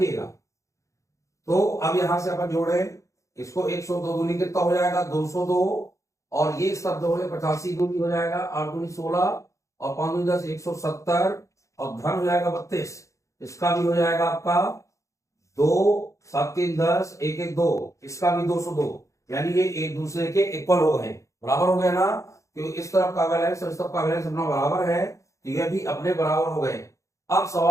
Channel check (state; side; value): late; right; 0.15 ms